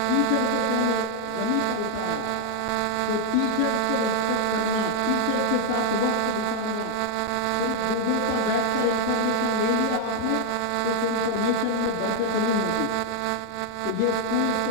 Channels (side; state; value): both; different; correlation 0.00